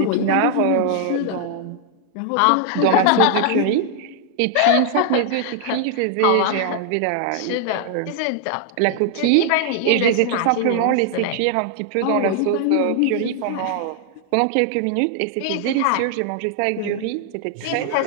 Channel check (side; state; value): both; different; correlation 0.00